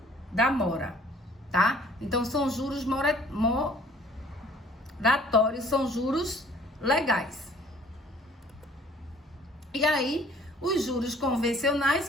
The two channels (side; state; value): both; normal; correlation 0.55